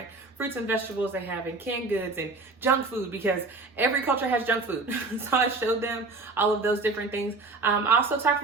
fruits and vegetables they have in canned goods and junk food, because every culture has junk food. So I showed them all of those different things. I also talked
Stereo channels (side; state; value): left; quieter; 3.5 dB